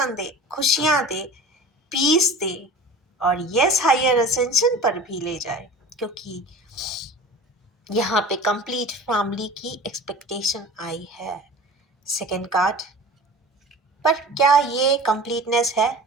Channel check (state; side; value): normal; both; correlation 0.38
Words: दे, खुशियाँ दे, पीस दे, और यस हायर असेंशन पर भी ले जाए, क्योंकि यहाँ पे कंप्लीट फैमिली की एक्सपेक्टेशन आई है। सेकंड कार्ड पर क्या ये कंप्लीटनेस है?